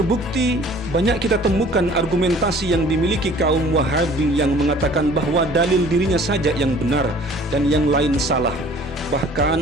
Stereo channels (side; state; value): both; normal; correlation 0.51